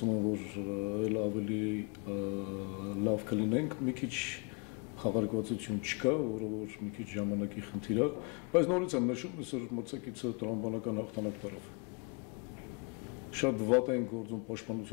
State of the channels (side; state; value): right; quieter; 34.5 dB